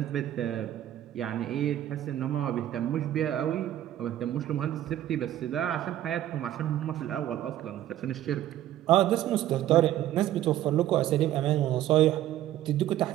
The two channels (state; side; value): quieter; left; 12.7 dB